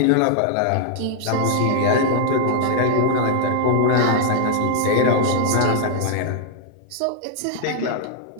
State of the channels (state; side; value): different; both; correlation 0.00